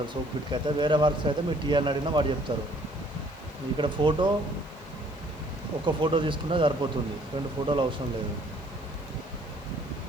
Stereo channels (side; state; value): left; noise; hiss, 28 dB below the sound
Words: సోక్పిట్కి అయితే. వేరే వర్క్స్ అయితే మీరు టీఆర్ని అడిగినా వాడు చెప్తారు. ఇక్కడ ఫోటో ఒక ఫోటో తీసుకున్నా సరిపోతుంది, 2 ఫోటోలు అవసరం లేదు.